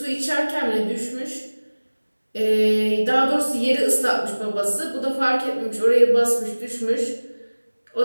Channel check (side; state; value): both; inverted; correlation -1.00